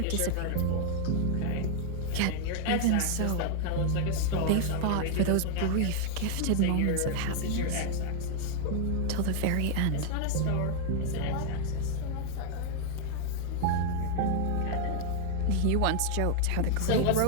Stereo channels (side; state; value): both; different; correlation 0.00